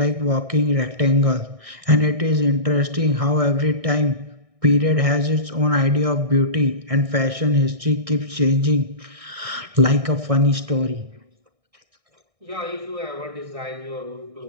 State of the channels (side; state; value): left; late; 1.6 ms